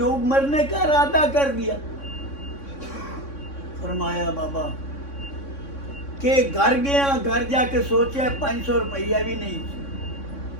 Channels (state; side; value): late; right; 3.6 ms